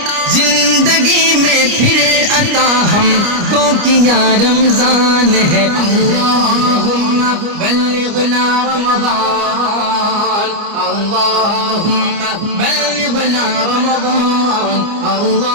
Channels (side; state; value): left; late; 29 ms